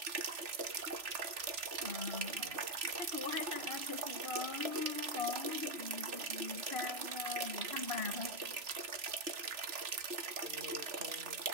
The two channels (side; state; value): left; late; 3.0 ms